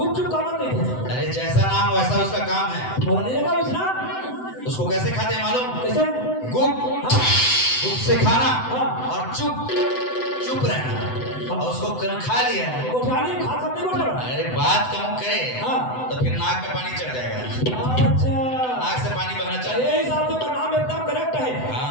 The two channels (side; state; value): right; late; 7.9 ms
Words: काबर नहीं थे अरे जैसा नाम वैसा उसका काम है। बोलने लगा उसना उसको कैसे खाते हैं मालूम? कैसे गुप हाँ गुप से खाना हाँ। और चुप रहना और उसको खा लिया। गोठाने खा सकते गोठा अरे बात कम करे हाँ। तो फिर नाक में पानी चढ़ जाएगा। अच्छा नाक से पानी बहना चाहिए। ये हिसाब से तो नाम एकदम करेक्ट है